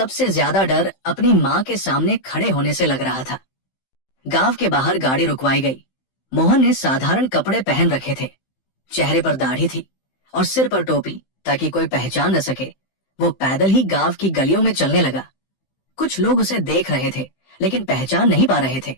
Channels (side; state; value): right; late; 15 ms